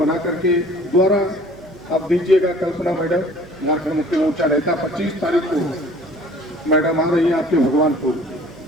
करके द्वारा आप दीजिएगा। कल्पना मैडम झारखंड मुक्ति मोर्चा नेता 25 तारीख को मैडम आ रही है आपके भगवानपुर,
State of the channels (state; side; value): noise; right; hum, 22 dB below the sound